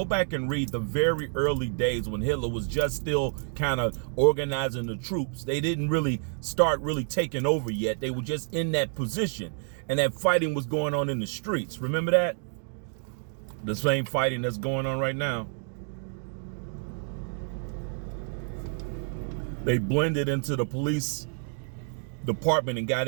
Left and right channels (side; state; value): left; silent; 59 dB below the other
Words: back and read the very early days when Hitler was just still kind of organizing the troops. They didn't really start taking over yet. They were just in that position, and that fighting was going on in the streets. Remember that? The same fighting that's going on right now. They blended into the police department and